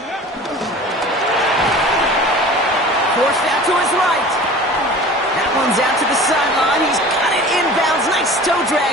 Forced out to his right. That one's out to the sideline. He's got it inbounds. Nice toe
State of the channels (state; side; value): normal; both; correlation 0.41